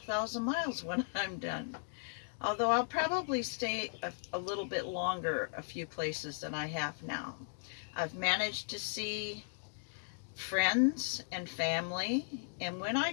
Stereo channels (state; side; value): silent; right; digital silence